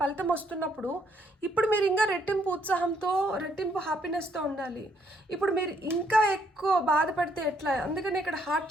వస్తున్నప్పుడు ఇప్పుడు మీరు ఇంకా రెట్టింపు ఉత్సాహంతో, రెట్టింపు హ్యాపీనెస్తో ఉండాలి. ఇప్పుడు మీరు ఇంకా ఎక్కువ బాధపడితే ఎట్లా? అందుకని ఇక్కడ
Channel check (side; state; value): both; normal; correlation 0.70